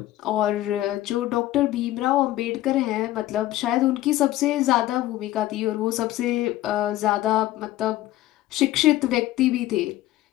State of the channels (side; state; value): right; quieter; 15.3 dB